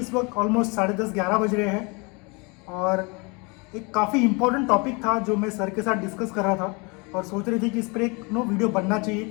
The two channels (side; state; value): right; quieter; 29.5 dB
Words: वक्त ऑलमोस्ट 10:30-11 बज रहे हैं और एक काफ़ी इम्पोर्टेंट टॉपिक था जो मैं सर के साथ डिस्कस कर रहा था और सोच रही थी कि इस पर एक वीडियो बनना चाहिए